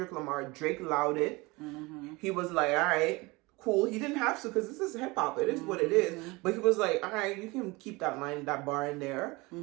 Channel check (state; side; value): quieter; left; 23.9 dB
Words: Lamar, Drake allowed it. He was like, all right, cool. He didn't have to, because this is hip hop. It is what it is. But he was like, all right, you can keep that bar in there.